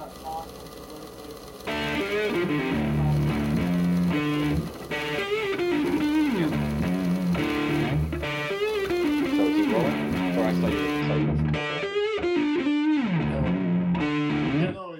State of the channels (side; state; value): both; identical; correlation 1.00